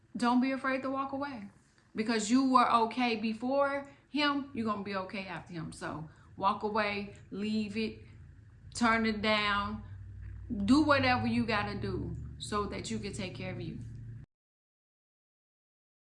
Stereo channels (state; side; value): identical; both; correlation 1.00